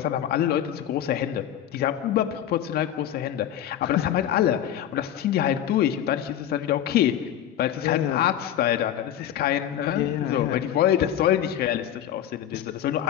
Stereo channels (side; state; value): right; quieter; 10.8 dB